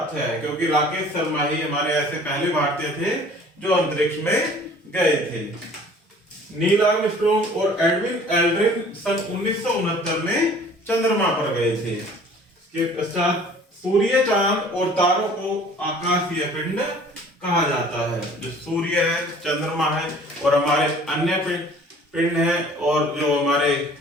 है, क्योंकि राकेश शर्मा ही हमारे ऐसे पहले भारतीय थे जो अंतरिक्ष में गए थे। नील आर्मस्ट्रॉन्ग और एडविन एल्ड्रिन सन 1969 में चंद्रमा पर गए थे। इसके पश्चात सूर्य, चांद और तारों को आकाशीय पिंड कहा जाता है। जो सूर्य है, चंद्रमा है और हमारे अन्य पिंड है, और जो हमारे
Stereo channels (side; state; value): both; normal; correlation 0.51